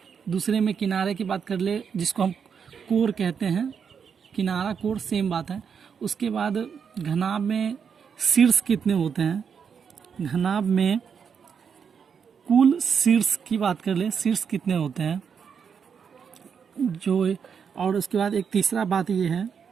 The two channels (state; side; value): quieter; left; 6.8 dB